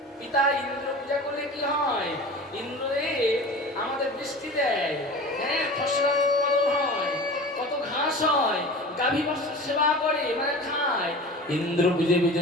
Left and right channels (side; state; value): both; normal; correlation 0.36